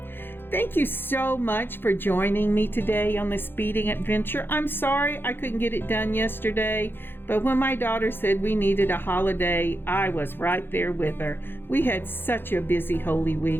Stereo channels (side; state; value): right; late; 0.10 ms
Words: Thank you so much for joining me today on this beading adventure. I'm sorry I couldn't get it done yesterday, but when my daughter said we needed a holiday, I was right there with her. We had such a busy Holy